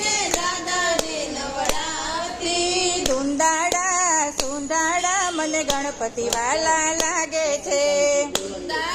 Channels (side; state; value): both; identical; correlation 1.00